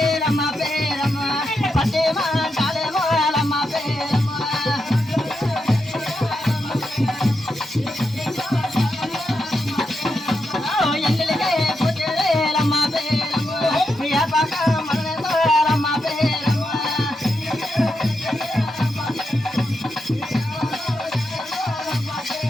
పేరమ్మ పట్టేమంటాలేమో లమ్మ పేరమ్మ ఎంగిలికే పుట్టేలమ్మ పేరమ్మ పక్క మనలమ్మ పేరమ్మ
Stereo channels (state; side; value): normal; both; correlation 0.85